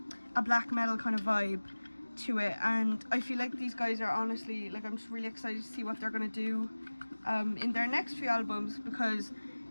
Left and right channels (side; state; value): both; inverted; correlation -1.00